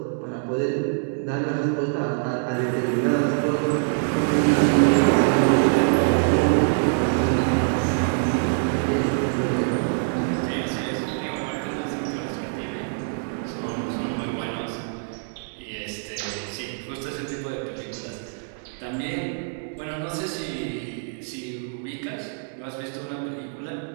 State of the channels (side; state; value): left; silent; digital silence